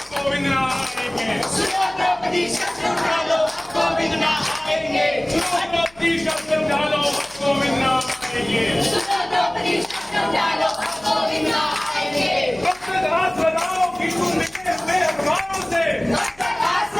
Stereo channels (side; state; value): left; noise; hum, 27 dB below the sound